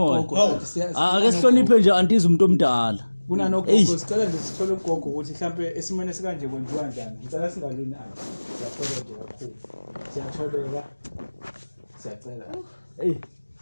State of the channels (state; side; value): inverted; both; correlation -1.00